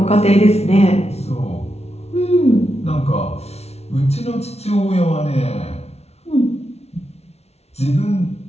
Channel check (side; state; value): right; late; 0.31 ms